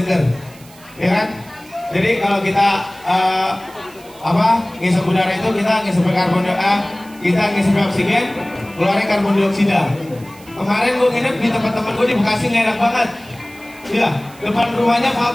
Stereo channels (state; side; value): noise; right; hiss, 23 dB below the sound